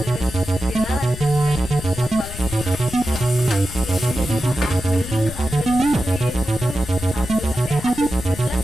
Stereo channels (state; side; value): noise; left; rumble, 10 dB below the sound